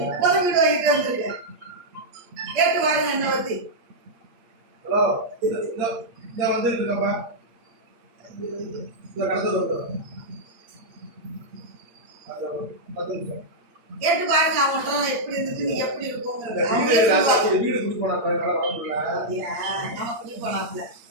இப்பதான் வீடு வாங்கிட்டு வந்திருக்கேன். கேட்டு பாருங்க என்ன பத்தி. கேட்டு பாருங்க அவங்கள்ட்ட எப்படி இருந்துட்டு நீங்க எப்படி இருக்கோங்கிறது. நம்ம குடி போனாப்ல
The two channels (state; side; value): late; left; 8.7 ms